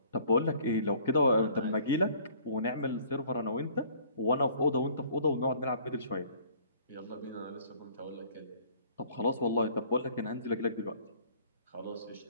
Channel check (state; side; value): inverted; both; correlation -0.55